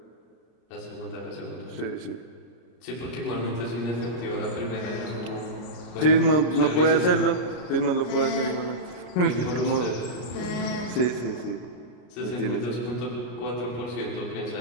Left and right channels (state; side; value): late; right; 33 ms